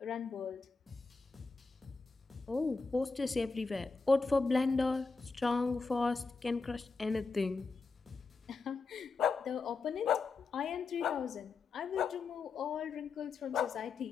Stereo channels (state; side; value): quieter; right; 4.4 dB